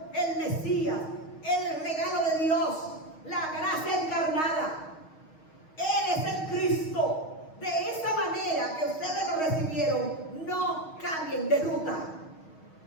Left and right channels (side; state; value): right; late; 6.3 ms